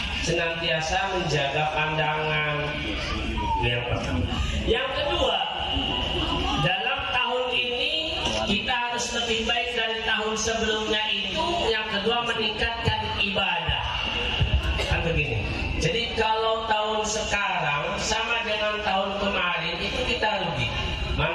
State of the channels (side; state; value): both; identical; correlation 1.00